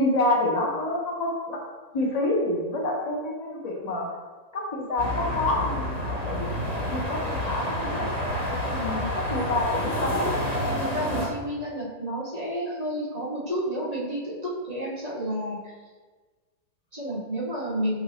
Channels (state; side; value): late; left; 1.8 ms